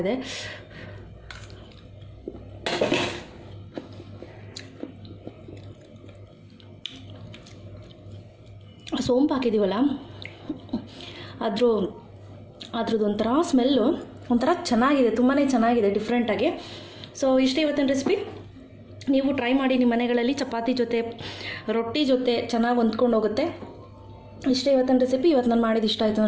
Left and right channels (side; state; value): both; identical; correlation 1.00